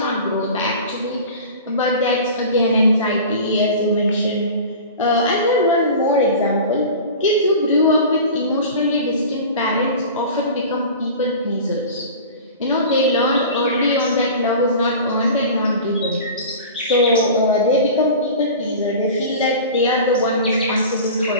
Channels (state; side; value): inverted; both; correlation -0.36